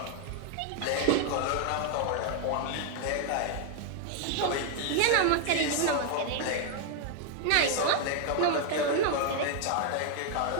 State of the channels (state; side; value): different; both; correlation 0.00